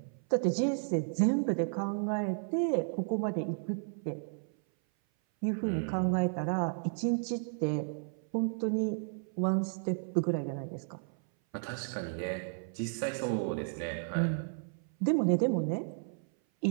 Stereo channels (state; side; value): silent; left; 56 dB below the other